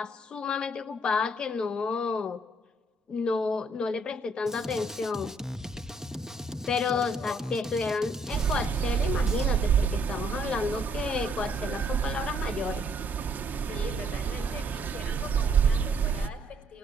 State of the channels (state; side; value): normal; both; correlation 0.67